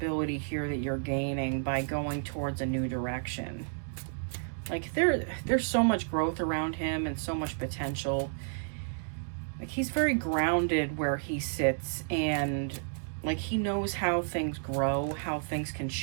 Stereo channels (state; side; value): silent; left; digital silence